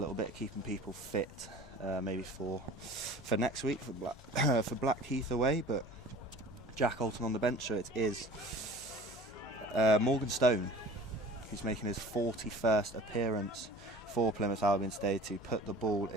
bit, keeping people fit, maybe for next week for Blackheath away. But Jack Alton on the bench, so it is Morgan Stone who's making his 41st appearance for Plymouth Albion today to put the ball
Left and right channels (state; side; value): normal; both; correlation 0.44